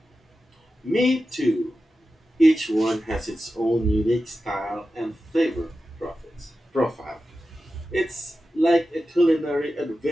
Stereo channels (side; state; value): both; normal; correlation 0.92